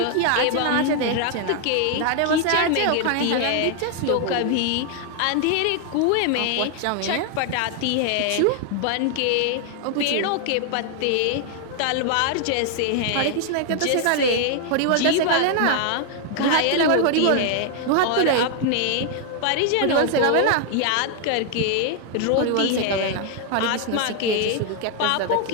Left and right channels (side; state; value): both; different; correlation 0.00